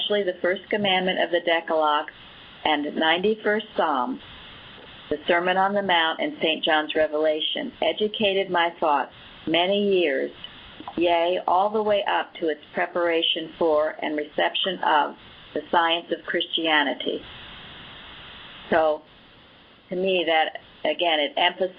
the first commandment of the Decalogue and 91st Psalm, the Sermon on the Mount, and St. John's Revelation, educated my thoughts many years, yea, all the way up to its preparation for and reception of the science of Christianity. So, to me, that, again, it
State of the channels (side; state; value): both; identical; correlation 1.00